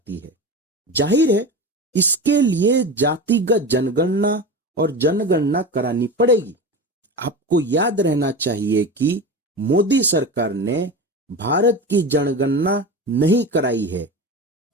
है। जाहिर है इसके लिए जातिगत जनगणना और जनगणना करानी पड़ेगी। आपको याद रहना चाहिए कि मोदी सरकार ने भारत की जनगणना नहीं कराई है,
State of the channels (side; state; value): both; normal; correlation 0.27